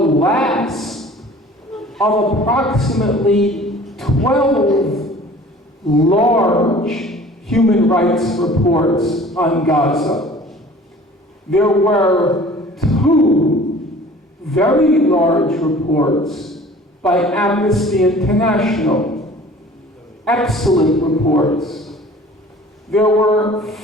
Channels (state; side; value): normal; both; correlation 0.47